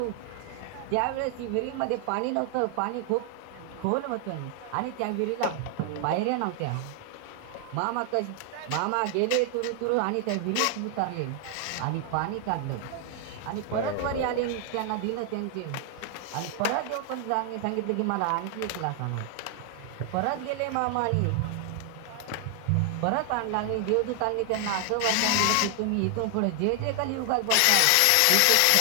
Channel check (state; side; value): different; both; correlation 0.00